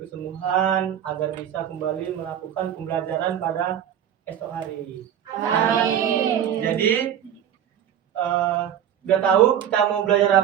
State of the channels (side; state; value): left; quieter; 9.8 dB